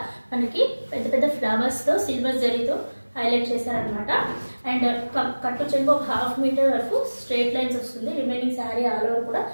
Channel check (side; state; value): both; inverted; correlation -1.00